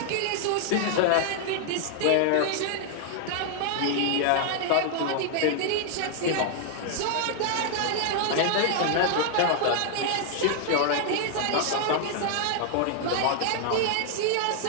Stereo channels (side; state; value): both; different; correlation 0.00